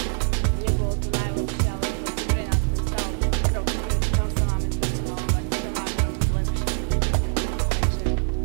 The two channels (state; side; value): silent; left; digital silence